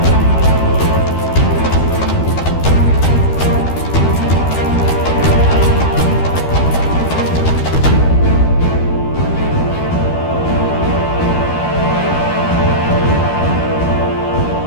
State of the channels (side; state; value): right; late; 12 ms